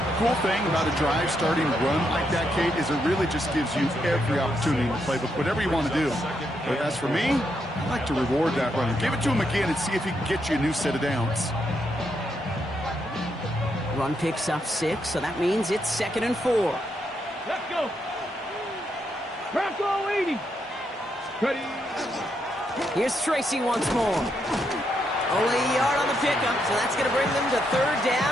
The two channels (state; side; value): normal; both; correlation 0.79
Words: Cool thing about a drive starting run like that, Kate, is it really just gives you every opportunity in the playbook, whatever you want to do. But as for me, I like to reward that runner. Give it to him again and see if he can get you a new set of downs. Run picks up 6, so that means it's 2nd and 4. Let's go. Bronco 80. Ready. Here's Tracy once more. Only a yard on the pickup, so that's going to bring them to 3rd